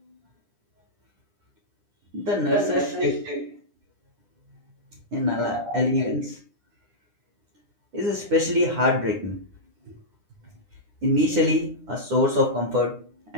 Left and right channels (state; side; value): late; left; 9.9 ms